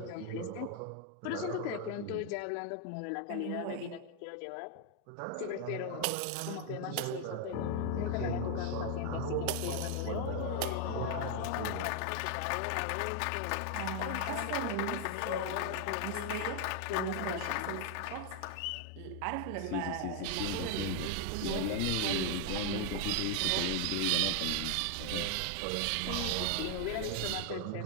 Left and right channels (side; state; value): both; different; correlation 0.00